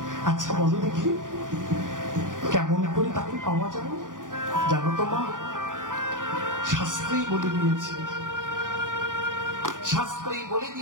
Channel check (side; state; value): left; late; 0.88 ms